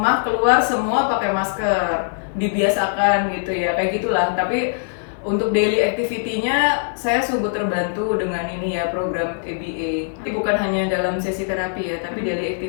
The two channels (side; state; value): right; silent; 65 dB below the other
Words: keluar semua pakai masker, dibiasakan gitu ya, kayak gitulah. Tapi untuk daily activity-nya saya sungguh terbantu dengan ini ya program ABA. Jadi bukan hanya dalam sesi terapi ya, tapi daily